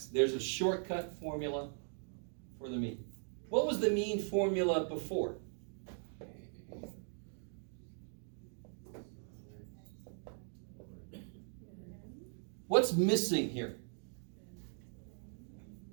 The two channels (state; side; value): silent; left; 51 dB below the other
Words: there's a shortcut formula for the mean. What was the mean formula before? What's missing here?